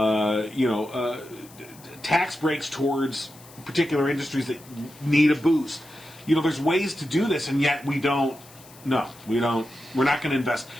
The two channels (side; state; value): left; noise; hiss, 22 dB below the sound